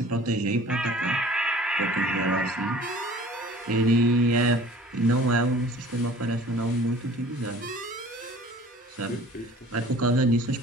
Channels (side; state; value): both; normal; correlation 0.48